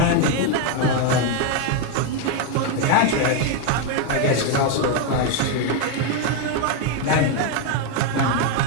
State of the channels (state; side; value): different; both; correlation 0.01